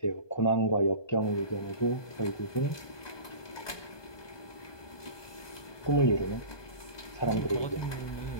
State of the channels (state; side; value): late; right; 1.2 ms